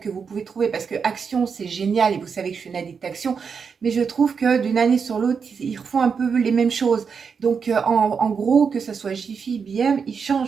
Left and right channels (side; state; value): left; quieter; 6.0 dB